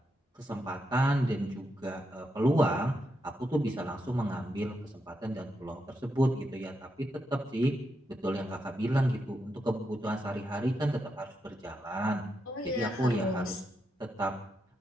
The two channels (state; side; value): normal; both; correlation 0.83